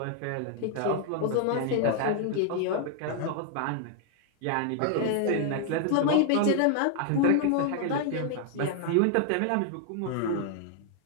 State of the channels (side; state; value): both; different; correlation 0.00